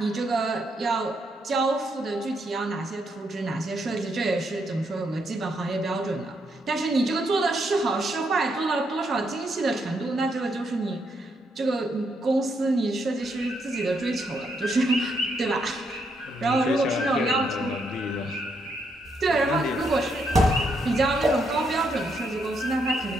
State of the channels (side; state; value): both; normal; correlation 0.77